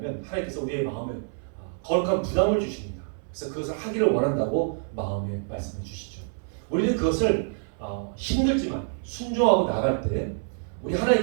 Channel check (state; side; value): silent; left; 60 dB below the other